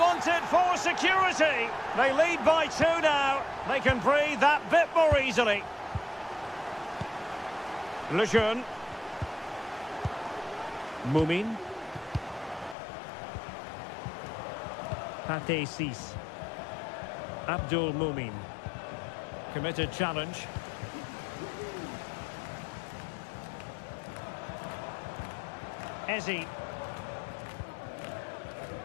for security. They lead by 2 now. They can breathe that bit more easily. Lejeune. Mumin. Pate 6. Abdul Mumin. Committed challenge. Ezi.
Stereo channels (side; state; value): right; drops out; at 12.8 s